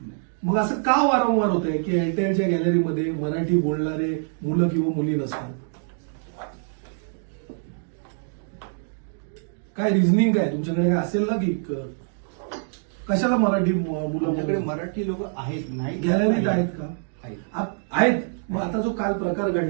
मग असं का वारंवार होत आहे की एअरटेलच्या गॅलरीमध्ये मराठी बोलणारे मुलं किंवा मुली नसतात? काय रिझनिंग काय तुमच्याकडे काय असेल ना की कशाला मराठी मुलं मराठी लोक आहेत नाही गॅलरीत आहेत का? आहेत. मग आता जो काल प्रकार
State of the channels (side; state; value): left; silent; digital silence